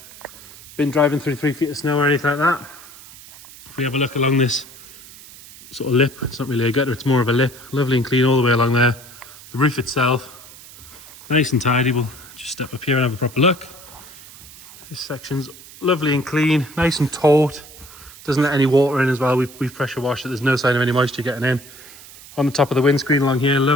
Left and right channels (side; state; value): right; noise; hiss, 19 dB below the sound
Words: been driving through 3 feet of snow or anything like that. If we have a look along this sort of lip, it's not really a gutter, it's more of a lip, lovely and clean all the way along there. The roof itself, nice and tidy. We'll just step up here and have a proper look. This section's lovely and clean, nice and taut. Doesn't let any water in as well. We've pressure washed it. There's no sign of any moisture getting in. On the top of the windscreen along here,